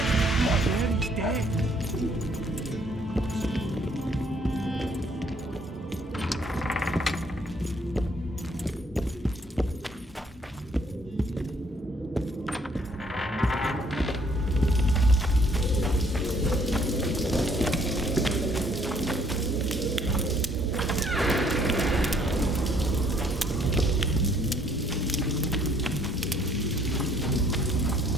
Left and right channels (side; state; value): both; normal; correlation 0.64